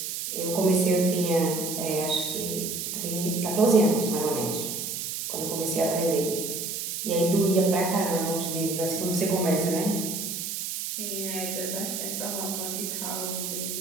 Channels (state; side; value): noise; right; hiss, 4 dB below the sound